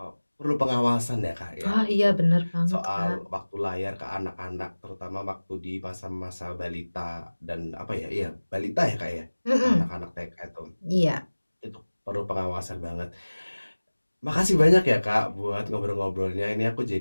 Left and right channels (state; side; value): inverted; both; correlation -1.00